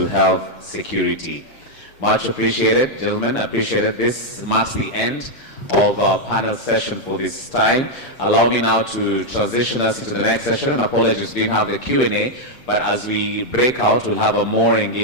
Health Security. Much appreciated, gentlemen. Appreciated. This marks the end of our panel session for this time. Allow me now to transition us into the next session, and apologies, we didn't have the Q&A, but as we break out, we'll have a more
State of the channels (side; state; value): right; late; 7.7 ms